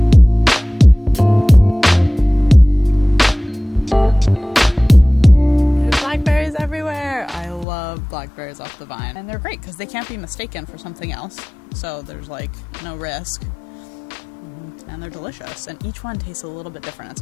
Blackberries off the vine, and they're great because they can't be mistaken for something else, so there's like no risk, and they're delicious, and each one tastes a little bit different. It's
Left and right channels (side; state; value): right; drops out; at 7.7 s